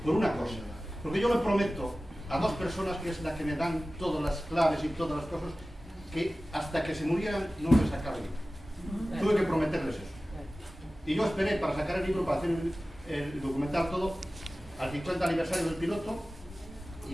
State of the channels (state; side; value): normal; both; correlation 0.96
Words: por una cosa, porque yo le prometo a dos personas, que es la que me dan todas las claves y todas las cosas, que hasta que se murieran no les sacaba el libro. Tuve que prometerles eso. Y yo esperé para sacar el libro, para hacer el documental todo, al 50 aniversario del piloto